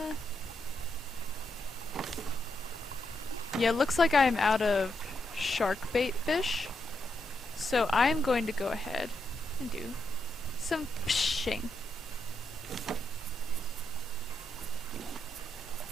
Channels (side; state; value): both; normal; correlation 0.82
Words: Yeah, it looks like I'm out of shark bait fish. So I'm going to go ahead and do some fishing.